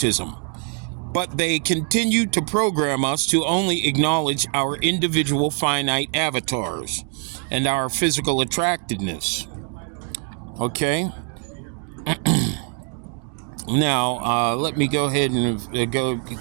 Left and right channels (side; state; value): left; quieter; 40.0 dB